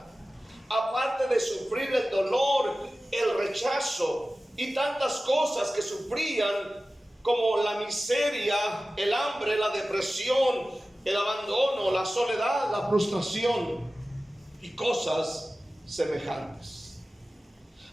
Aparte de sufrir el dolor, el rechazo y tantas cosas que sufrían, como la miseria, el hambre, la depresión, el abandono, la soledad, la frustración y cosas semejantes.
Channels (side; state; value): both; normal; correlation 0.96